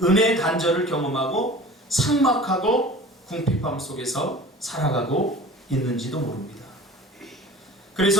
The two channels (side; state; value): both; normal; correlation 0.40